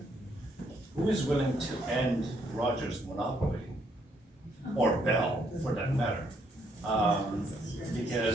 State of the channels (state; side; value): normal; both; correlation 0.71